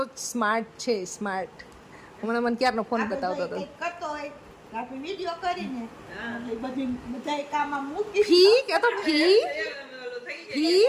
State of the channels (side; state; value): both; identical; correlation 1.00